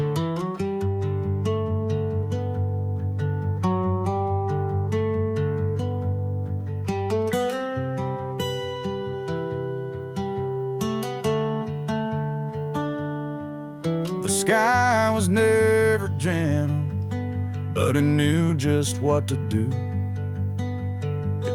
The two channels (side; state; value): both; identical; correlation 1.00